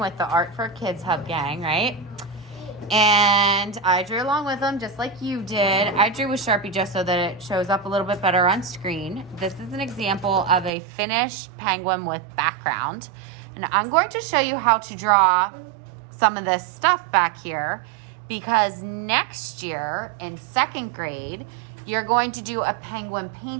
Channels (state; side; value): drops out; left; at 10.7 s